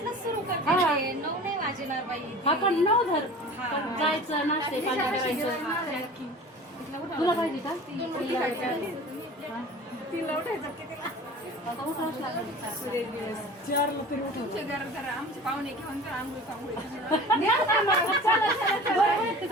सुरू करते. 9 नाही वाजणार बाई. आपण 9 धर जायचं नाश्ते पाणी करायचं तुला पाहिजे का तिला उठायचं कितीला? आता उठावंच लागेल. आमचे पाहुणे घेऊन तर आंघोळ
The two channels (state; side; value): normal; both; correlation 0.40